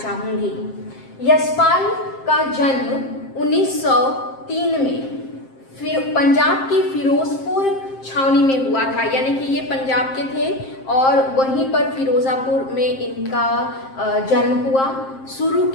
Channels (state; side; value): late; right; 7.6 ms